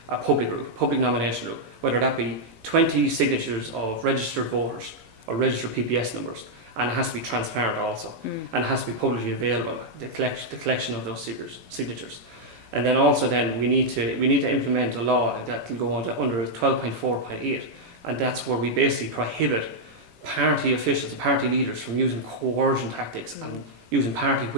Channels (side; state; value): left; late; 18 ms